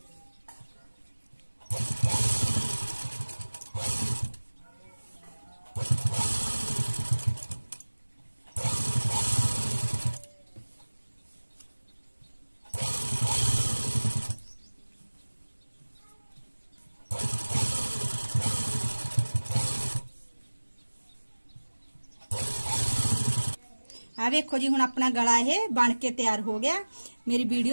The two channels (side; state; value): both; inverted; correlation -1.00